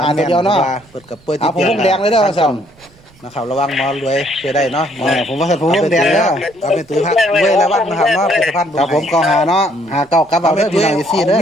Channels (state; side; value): noise; right; rumble, 29 dB below the sound